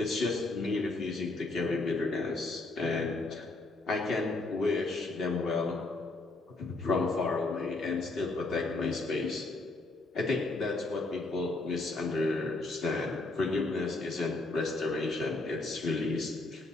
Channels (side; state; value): right; quieter; 3.1 dB